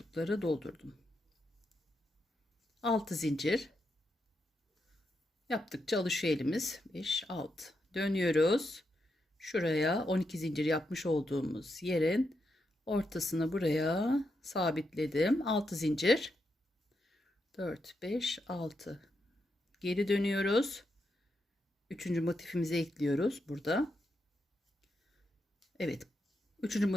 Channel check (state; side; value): normal; both; correlation 0.83